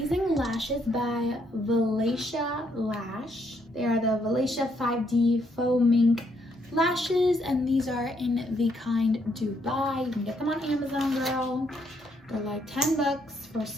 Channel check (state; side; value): normal; both; correlation 0.73